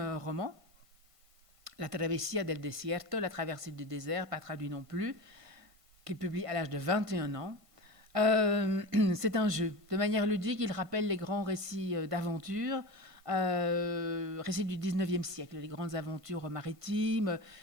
roman, La Travesía del Desierto, La traversée du désert, pas traduit non plus, qu'il publie à l'âge de 21 ans. C'est un jeu. De manière ludique, il rappelle les grands récits d'aventure, récits du 19e siècle, les grandes aventures maritimes.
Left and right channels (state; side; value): late; left; 1.5 ms